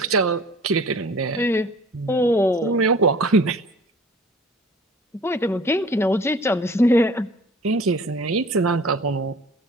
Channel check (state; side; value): normal; both; correlation 0.47